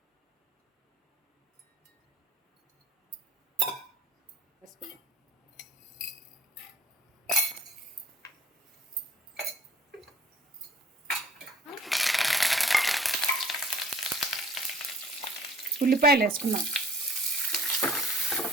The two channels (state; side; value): normal; both; correlation 0.52